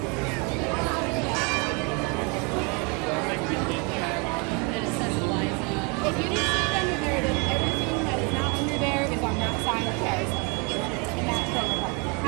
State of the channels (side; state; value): left; quieter; 31.9 dB